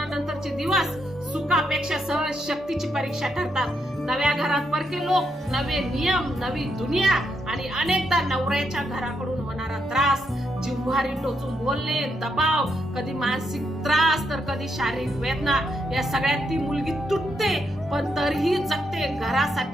दिवस सुखापेक्षा सहज शक्तीची परीक्षा ठरतात. नव्या घरात परके लोक, नवे नियम, नवी दुनिया आणि अनेकदा नवऱ्याच्या घराकडून होणारा त्रास, जिव्हारी टोचून बोलणे, दबाव, कधी मानसिक त्रास तर कधी शारीरिक वेदना. या सगळ्यात ती मुलगी तुटते, पण तरीही जगते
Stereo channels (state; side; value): normal; both; correlation 0.79